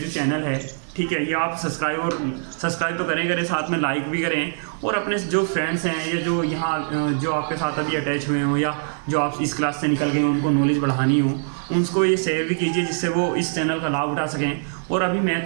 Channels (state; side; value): silent; left; 55 dB below the other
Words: चैनल है, ठीक है, ये आप सब्सक्राइब तो करें साथ में लाइक भी करें, और अपने जो फ्रेंड्स हैं या जो यहाँ जो आपके साथ अभी अटैच हुए हों या जो आप इस क्लास से निकल गए हो उनको नॉलेज बढ़ानी हो, उनको ये शेयर भी कीजिए जिससे वो इस चैनल का लाभ उठा सकें। और अभी